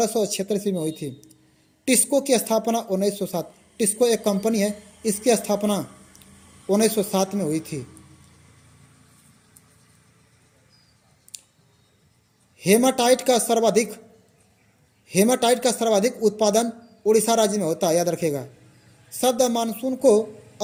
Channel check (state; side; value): identical; both; correlation 1.00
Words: ईस्वी में हुई थी। टिस्को की स्थापना 1907, टिस्को एक कंपनी है, इसकी स्थापना 1907 में हुई थी। हेमाटाइट का सर्वाधिक उत्पादन उड़ीसा राज्य में होता है, याद रखिएगा। शब्द मानसून को